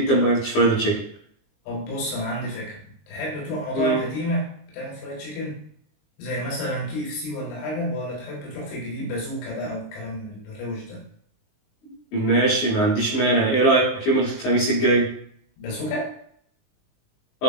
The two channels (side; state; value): right; late; 19 ms